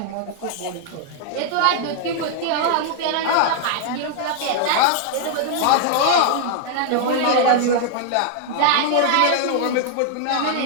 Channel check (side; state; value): both; different; correlation 0.00